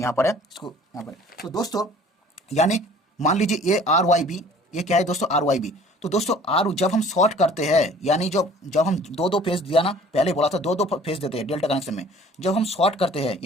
यहाँ पर है, इसको यहाँ पर है। तो दोस्तों यानी मान लीजिए ये आर वाई बी, ये क्या है दोस्तों, आर वाई बी। तो दोस्तों आर जब हम शॉर्ट करते हैं, यानी जब जब हम दो दो फेज दिया ना, पहले बोला था दो दो फेज देते हैं डेल्टा कनेक्शन में, जब हम शॉर्ट करते हैं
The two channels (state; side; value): normal; both; correlation 0.51